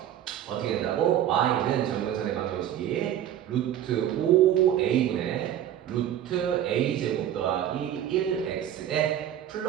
어떻게 된다고? y는 점근선의 방정식이 루트 5a분의 루트 a제곱 더하기 1x에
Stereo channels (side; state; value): left; quieter; 11.0 dB